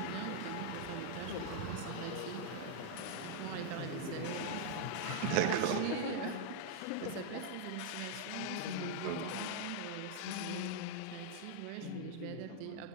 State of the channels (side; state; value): both; different; correlation -0.01